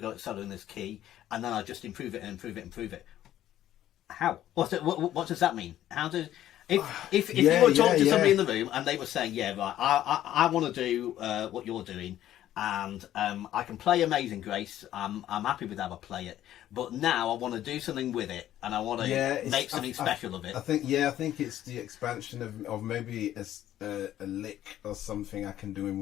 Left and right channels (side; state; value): right; quieter; 12.5 dB